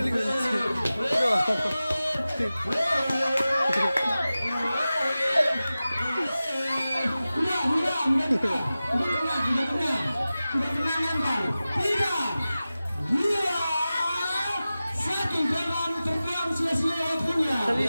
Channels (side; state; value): both; inverted; correlation -0.96